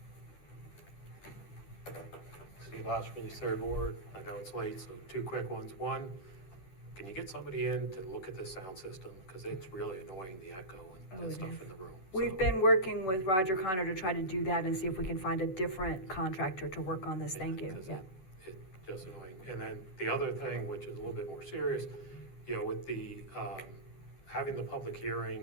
Steve Oshman, third ward. I know it's late, so two quick ones. One, can you get somebody in to look at the sound system? Because it's really annoying, the echo and stuff in the room. We've been working with Roger Connor to try to do that and see if we can find a different contractor to work on this. Thank you. Yeah. It's just annoying. And then the other thing, which is a little bit more serious, with the, having the public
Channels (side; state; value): right; late; 10 ms